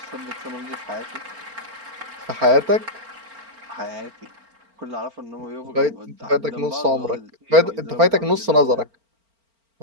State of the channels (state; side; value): late; left; 4.4 ms